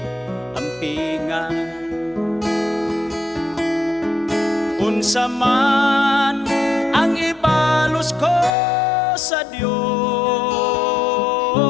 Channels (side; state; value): right; drops out; at 8.5 s